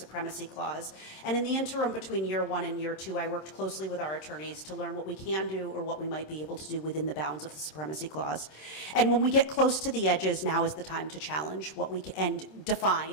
Clause. And in the interim between year 1 and year 2, I worked closely with our attorneys to learn what we can do or what we might be able to do within the bounds of the Supremacy Clause. And when we get close to the edges, now is the time to challenge what we can and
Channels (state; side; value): late; right; 26 ms